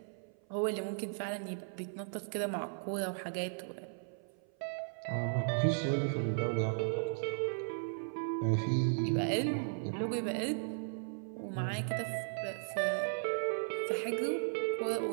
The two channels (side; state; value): left; silent; 54 dB below the other